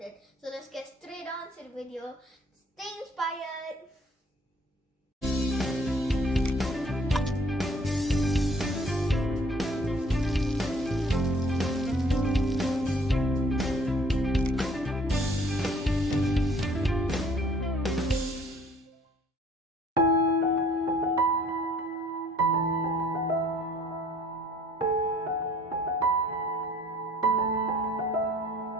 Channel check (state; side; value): normal; both; correlation 0.56